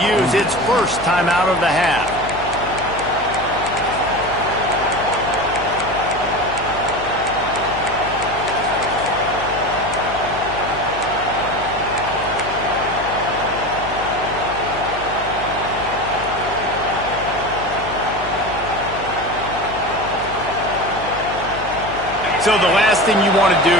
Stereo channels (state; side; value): noise; left; hum, 12 dB below the sound